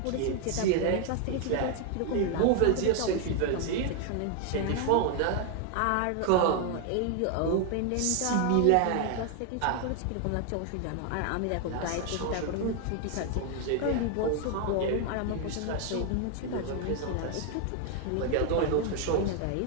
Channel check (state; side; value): different; both; correlation 0.01